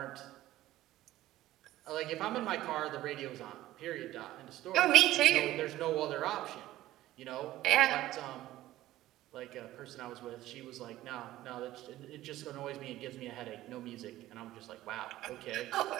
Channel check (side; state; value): left; quieter; 15.2 dB